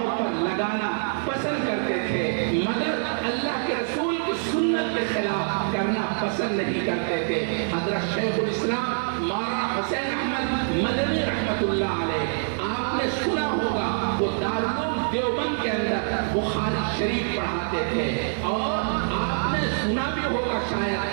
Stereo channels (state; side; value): silent; left; digital silence